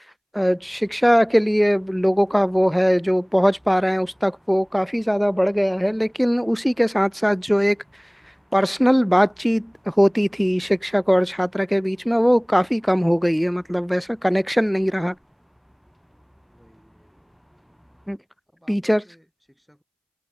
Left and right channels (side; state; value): both; identical; correlation 1.00